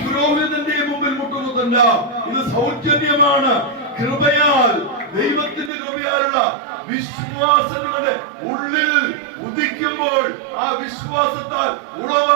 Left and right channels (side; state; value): left; drops out; at 5.7 s